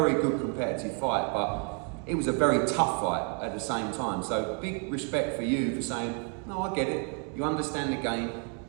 good competitive fight, but it was a very tough fight at the same time. So big respect for you for saying, no, I get it. You understand the game.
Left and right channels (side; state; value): left; quieter; 39.9 dB